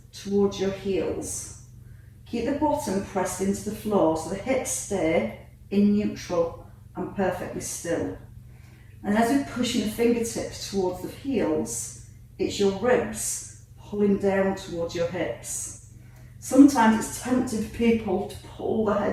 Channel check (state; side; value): identical; both; correlation 1.00